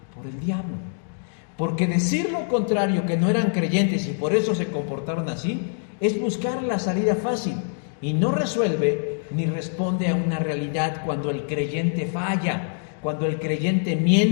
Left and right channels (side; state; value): right; silent; digital silence